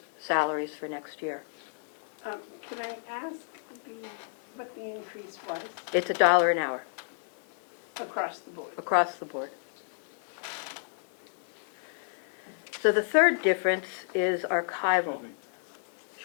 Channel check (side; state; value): right; silent; 57 dB below the other